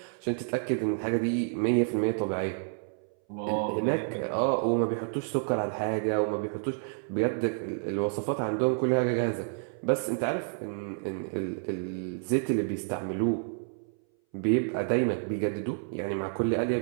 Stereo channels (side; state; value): left; silent; 58 dB below the other